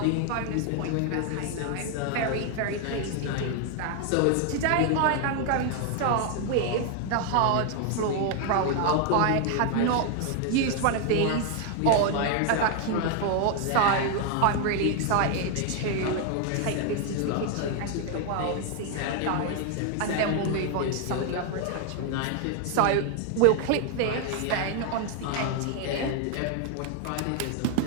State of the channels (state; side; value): different; both; correlation 0.00